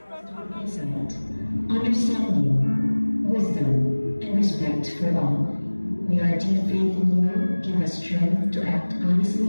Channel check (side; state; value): both; inverted; correlation -1.00